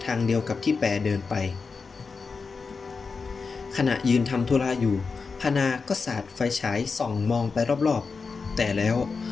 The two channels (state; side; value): quieter; right; 4.8 dB